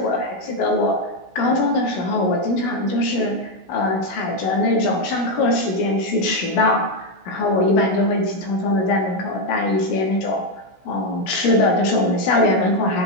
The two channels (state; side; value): late; right; 16 ms